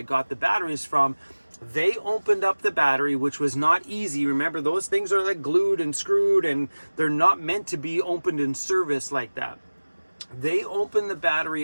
got the batteries from, they opened up the battery, which was not easy. Remember, those things are like glued and screwed, and they're not meant to be opened in service like that. They opened the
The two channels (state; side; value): inverted; both; correlation -1.00